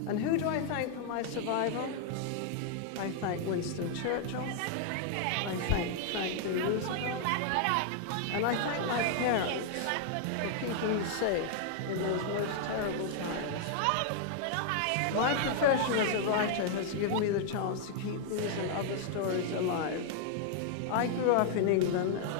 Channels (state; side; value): different; both; correlation 0.00